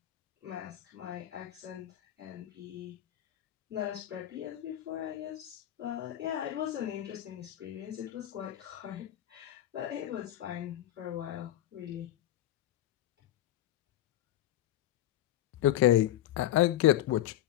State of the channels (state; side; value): quieter; right; 13.1 dB